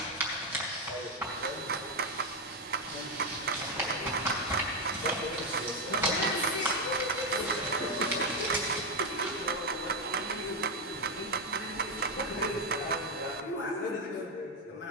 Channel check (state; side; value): normal; both; correlation 0.06